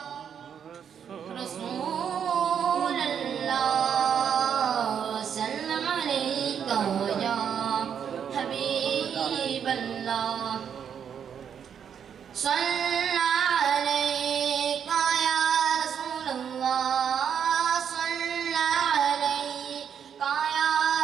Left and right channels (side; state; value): left; quieter; 8.0 dB